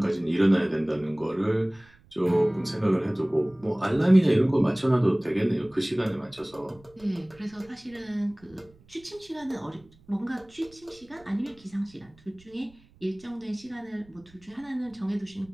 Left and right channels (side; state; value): right; noise; rumble, 28 dB below the sound